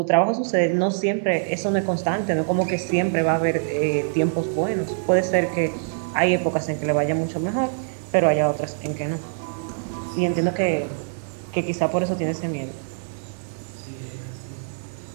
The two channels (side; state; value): left; silent; digital silence